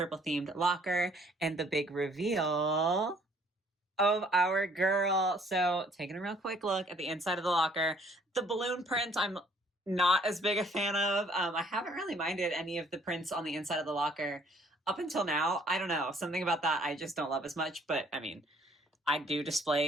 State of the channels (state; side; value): normal; both; correlation 0.61